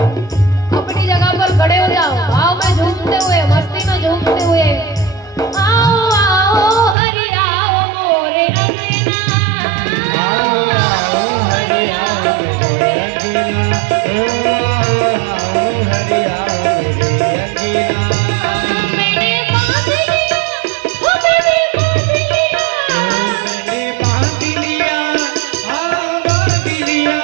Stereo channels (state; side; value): drops out; left; at 7.0 s